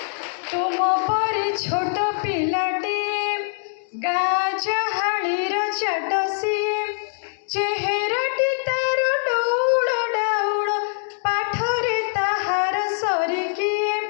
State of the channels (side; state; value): right; silent; digital silence